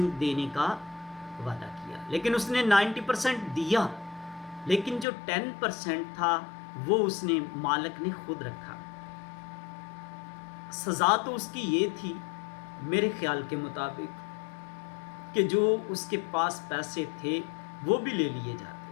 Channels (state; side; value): drops out; right; at 5.1 s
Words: देने का वादा किया। लेकिन उसने 90% दिया, लेकिन जो 10% था वो उसने मालिक ने खुद रखा। सज़ा तो उसकी ये थी मेरे ख्याल के मुताबिक कि जो उसके पास पैसे थे वो भी ले लिए जाते।